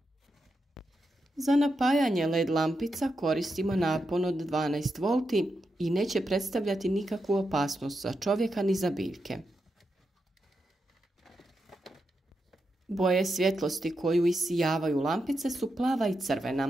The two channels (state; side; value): normal; both; correlation 0.86